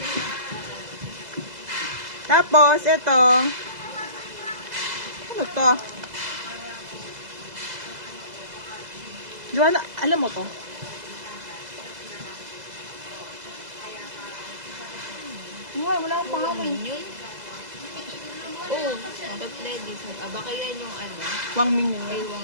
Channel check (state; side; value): late; left; 2.0 ms